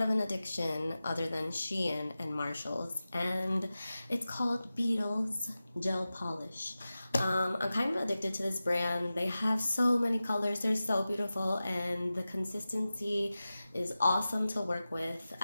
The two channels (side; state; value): both; inverted; correlation -0.95